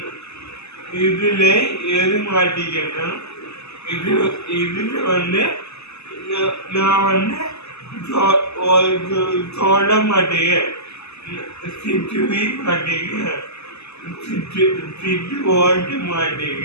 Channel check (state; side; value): late; right; 0.80 ms